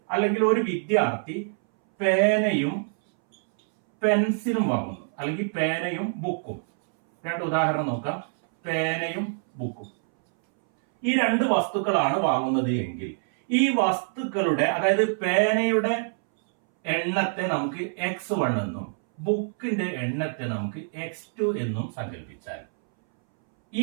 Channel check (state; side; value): silent; left; 61 dB below the other